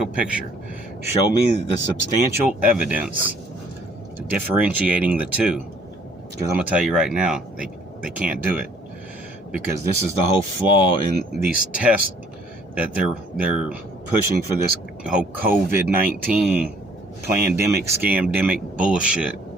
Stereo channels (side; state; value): both; normal; correlation 0.60